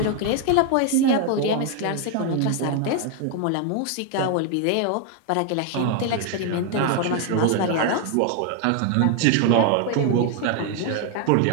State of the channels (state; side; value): different; both; correlation 0.01